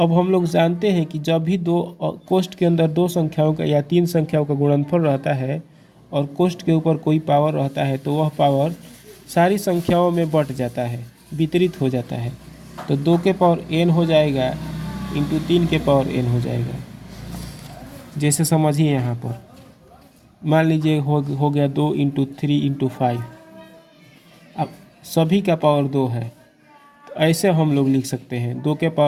हम लोग जानते हैं कि जब भी दो कोष्ठ के अंदर दो संख्याओं का या 3 संख्याओं का गुणनफल रहता है और कोष्ठ के ऊपर कोई पावर रहता है, तो वह पावर सारी संख्याओं में बट जाता है, वितरित हो जाता है। तो 2 के पावर n हो जाएगा इंटू 3 के पावर n हो जाएगा। जैसे समझिए यहाँ पर मान लीजिए हो गया 2 × 3 × 5। अब सभी का पावर 2 है, तो ऐसे हम लोग लिख सकते हैं 2 के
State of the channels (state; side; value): identical; both; correlation 1.00